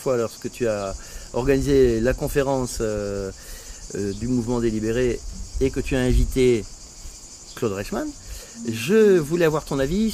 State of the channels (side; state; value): both; identical; correlation 1.00